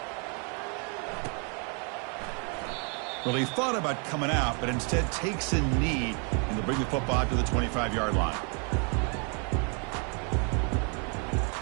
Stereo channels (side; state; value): left; quieter; 37.4 dB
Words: Well, he thought about coming out, but instead takes a knee and to bring the football out to the 25-yard line.